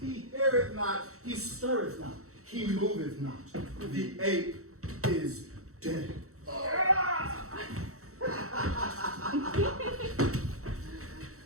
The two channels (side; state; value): left; late; 0.64 ms